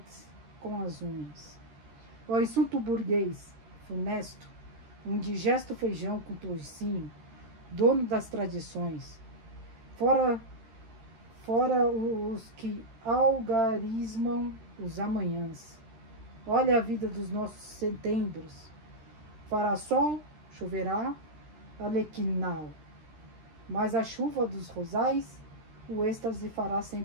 com as unhas. O insulto burguês, funesto, um digesto feijão com toucinho, dono das tradições, fora os que algarismam os amanhãs. Olha a vida dos nossos setembros. Fará sol, choverá, alequinal. Mas a chuva dos rosais, o êxtase fará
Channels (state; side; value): late; left; 13 ms